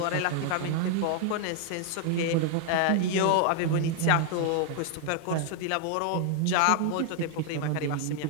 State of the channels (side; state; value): both; different; correlation 0.00